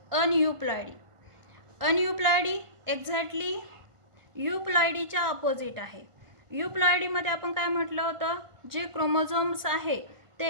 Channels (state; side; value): late; left; 1.5 ms